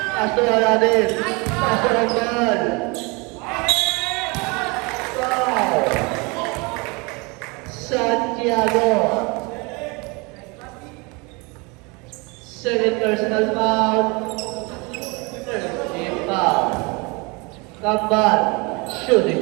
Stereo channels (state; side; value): quieter; left; 28.2 dB